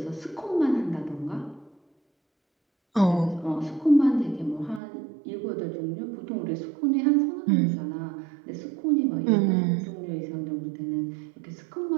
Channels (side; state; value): left; drops out; at 4.8 s